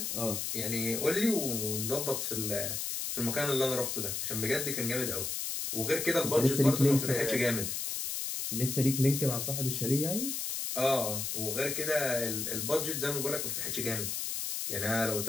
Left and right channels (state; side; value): noise; left; hiss, 2 dB below the sound